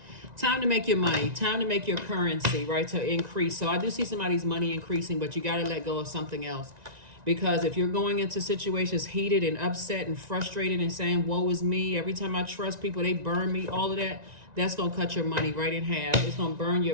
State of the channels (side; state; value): left; late; 1.9 ms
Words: Time to make your money. Time to make your currency, right? To increase. So I do see somebody's money increasing, but you got to let go of something else. Because if you're going into situations heated and upset and frustrated and saying, woe is me, every time I trust people, they burn me, all of that, that's going to cut your money right in half. It's going to burn